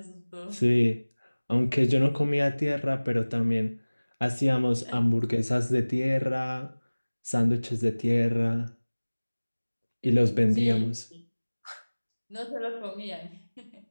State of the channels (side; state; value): both; inverted; correlation -1.00